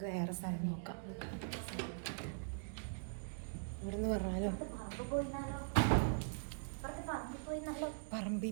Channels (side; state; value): left; silent; digital silence